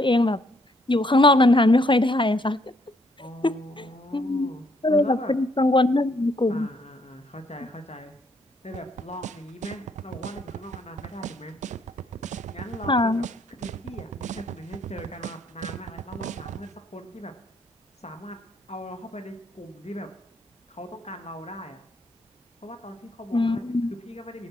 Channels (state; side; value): normal; both; correlation 0.69